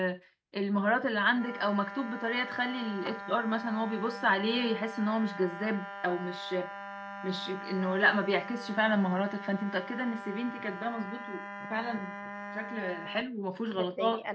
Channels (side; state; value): both; identical; correlation 1.00